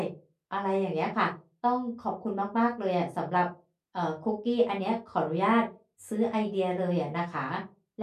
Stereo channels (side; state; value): both; identical; correlation 1.00